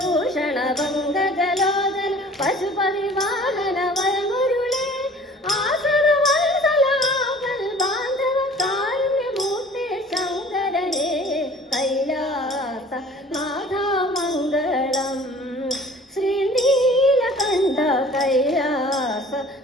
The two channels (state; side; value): normal; both; correlation 0.48